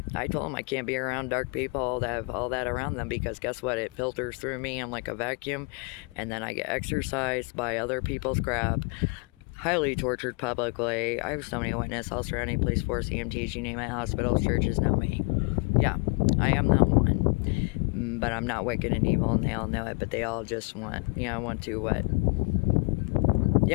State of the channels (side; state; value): right; quieter; 31.8 dB